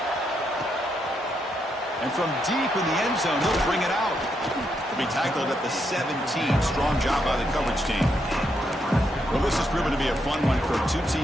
And from deep in the end zone, they'll bring it out. They'll be tackled at the 17. Strong job by the coverage team. Well, this has proven to be a fun one for two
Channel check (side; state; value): both; normal; correlation 0.79